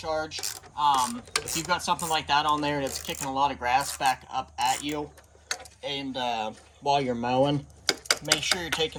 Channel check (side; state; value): both; identical; correlation 1.00